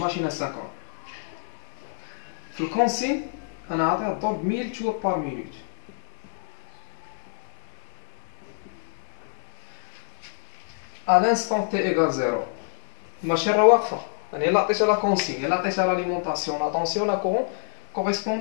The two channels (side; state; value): right; silent; digital silence